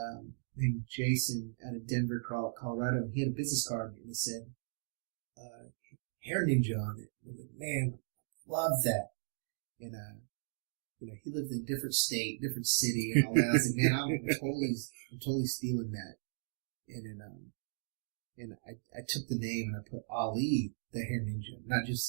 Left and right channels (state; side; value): silent; left; digital silence